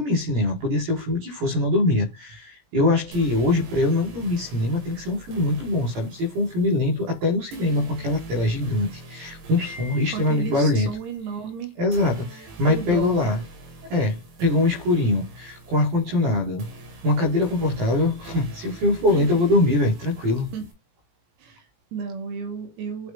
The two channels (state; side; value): late; left; 17 ms